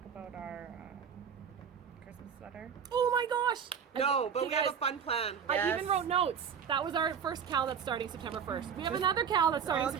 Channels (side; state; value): left; quieter; 7.3 dB